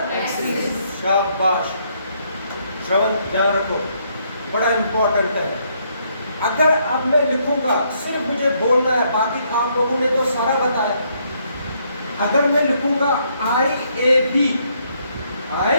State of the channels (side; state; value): both; inverted; correlation -0.72